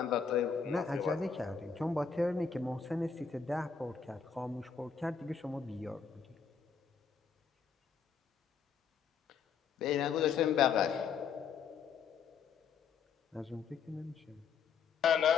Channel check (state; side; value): quieter; right; 6.2 dB